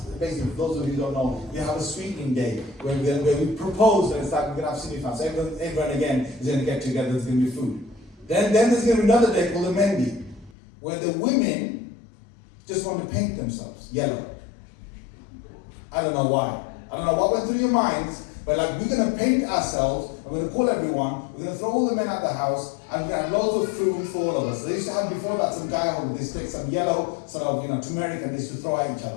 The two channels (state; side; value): drops out; right; at 10.6 s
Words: basically, for those of you who don't know, we have a sweetening day where we propose and it's like we're going to have cinefan. So everyone again is going to get together. There's going to be food. Then there's going to be another day called the Mendi, where the women just want to paint themselves yellow. I don't know why. I don't know what went through your minds, but like we're going to paint ourselves, we're going to call everyone, we're going to throw all the men out the house, and we're going to have loads of food for all of us. So they used to have before that some guy on this take some yellow sort of turmeric and they used to throw at each